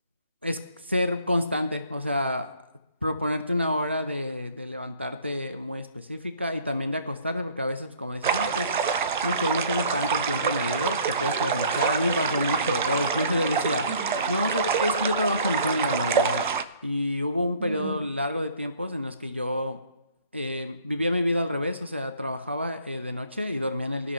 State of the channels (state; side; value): inverted; both; correlation -0.55